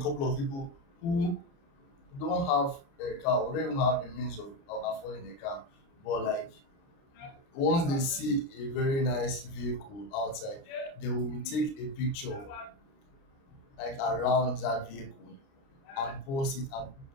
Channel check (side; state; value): right; late; 29 ms